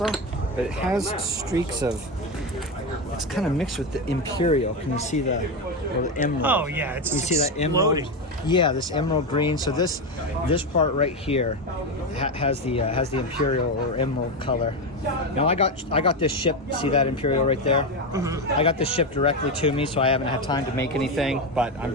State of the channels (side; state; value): both; normal; correlation 0.13